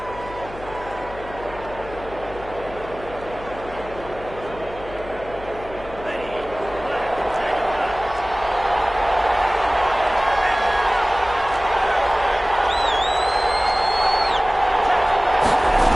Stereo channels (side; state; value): left; noise; hum, 15 dB below the sound